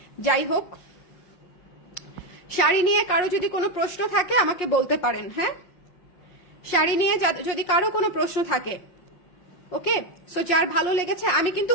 যাই হোক, শাড়ি নিয়ে কারো যদি কোনো প্রশ্ন থাকে আমাকে বলতে পারেন। হ্যাঁ, শাড়ি নিয়ে যদি কারো কোনো প্রশ্ন থাকে, ওকে? সো যার ভালো লেগেছে, আমি কিন্তু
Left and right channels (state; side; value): late; right; 5.6 ms